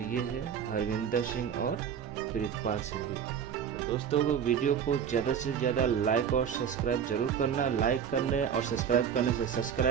है हरविंदर सिंह और प्रीतपाल सिंह। दोस्तों को वीडियो को ज़्यादा से ज़्यादा लाइक और सब्सक्राइब जरूर करना। लाइक करने और सब्सक्राइब करने से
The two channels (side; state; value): left; quieter; 8.0 dB